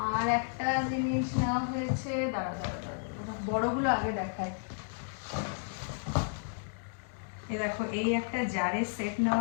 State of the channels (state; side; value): silent; right; digital silence